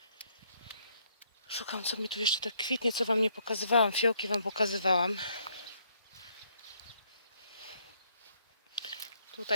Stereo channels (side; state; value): both; inverted; correlation -0.70